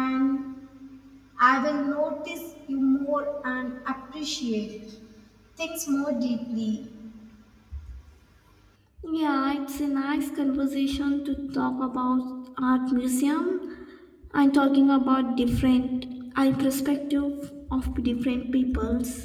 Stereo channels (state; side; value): identical; both; correlation 1.00